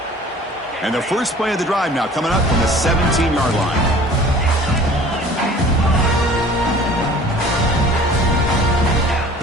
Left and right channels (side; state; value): both; normal; correlation 0.47